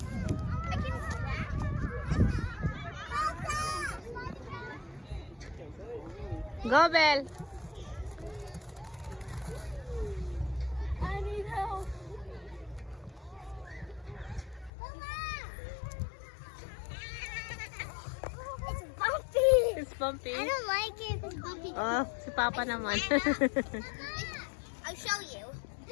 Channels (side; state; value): right; drops out; at 14.7 s